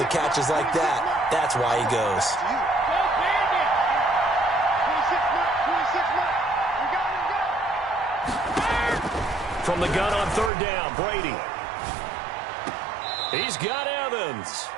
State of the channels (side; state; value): left; drops out; at 10.5 s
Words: of catches like that. That's why he goes. From the gun on 3rd down, Brady. He's got Evans.